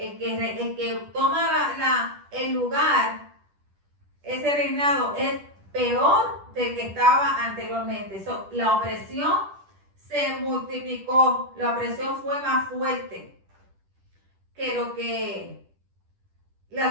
que toma el lugar, ese reinado es peor del que estaba anteriormente. La opresión se multiplicó, la opresión fue más fuerte que lo que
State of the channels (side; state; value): left; late; 10 ms